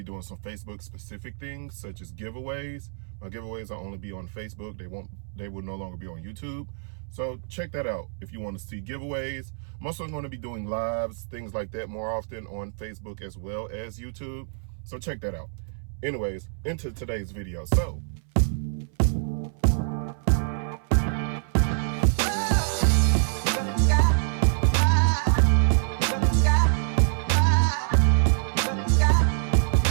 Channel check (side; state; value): left; silent; 60 dB below the other